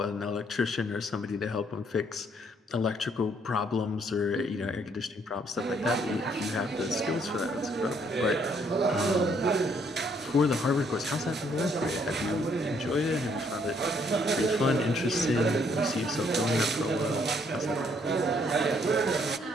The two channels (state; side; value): normal; both; correlation 0.68